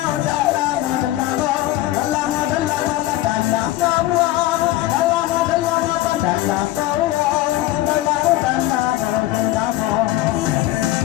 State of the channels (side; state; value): right; quieter; 15.7 dB